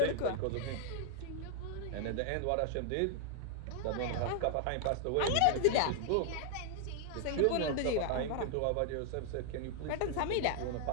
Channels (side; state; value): both; different; correlation 0.00